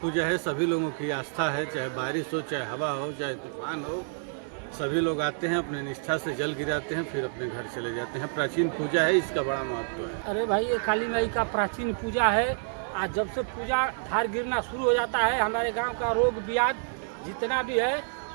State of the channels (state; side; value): silent; left; 59 dB below the other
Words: है, सभी लोगों की आस्था है, चाहे बारिश हो, चाहे हवा हो, चाहे तूफान हो, सभी लोग आते हैं, अपने निष्ठा से जल गिराते हैं, फिर अपने घर चले जाते हैं। प्राचीन पूजा है, इसका बड़ा महत्व है। अरे भाई, ये काली माई का प्राचीन पूजा है। आज जब से पूजा धार गिरना शुरू हो जाता है, हमारे गांव का रोग ब्याज जितना भी है